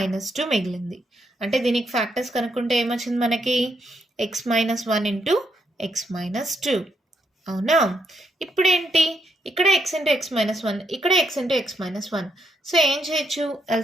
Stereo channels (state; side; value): normal; both; correlation 0.77